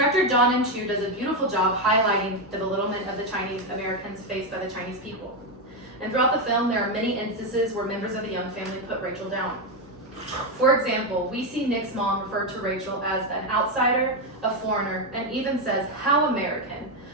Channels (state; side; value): noise; right; hum, 28 dB below the sound